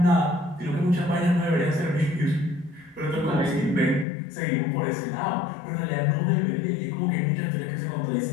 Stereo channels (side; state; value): right; drops out; at 4.0 s